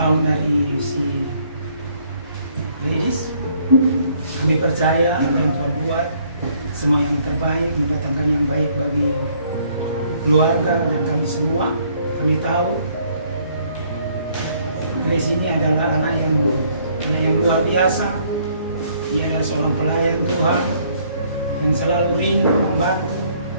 dari si Ladies. Kami percaya apa yang Tuhan buat semua yang terbaik, mendatangkan yang baik bagi keluarga dan kami semua. Kami tahu Grace ini adalah anak yang luar biasa. Dia adalah seorang pelayan Tuhan yang selalu rindu membantu,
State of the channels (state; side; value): inverted; both; correlation -0.64